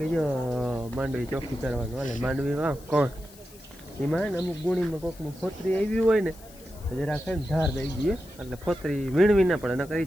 જો માંડવી ચોખ્ખી કરવાનું હાલે. માંડવી વાવ કોણ એમાં ને અમુક ગુણીમાં કોકનું ફોતરી આવી હોય ને જરાક ને ધાર દઈ દઈએ એટલે ફોતરી વીણવી ના પડે, નકર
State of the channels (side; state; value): left; noise; hiss, 22 dB below the sound